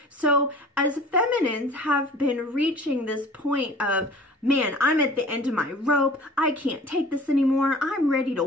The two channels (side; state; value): both; normal; correlation 0.45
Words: So as feminines have been reaching this point of, man, I'm at the end of my rope, I can't take this anymore, I'm ready to